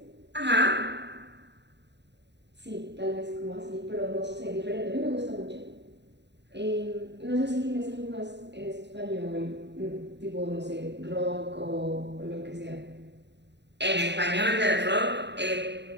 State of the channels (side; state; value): left; late; 0.50 ms